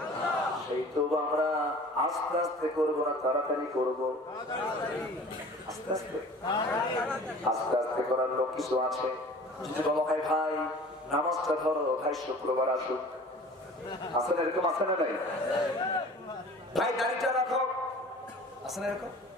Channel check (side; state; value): both; normal; correlation 0.44